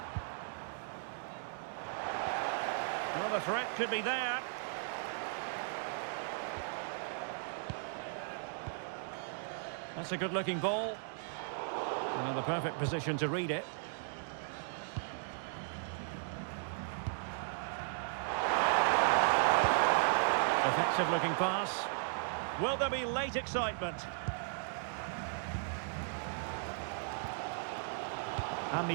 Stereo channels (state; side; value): silent; left; digital silence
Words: Well, the threat could be there. That's a good-looking ball. And in the perfect position to read it. Effective-looking pass. Will there be late excitement?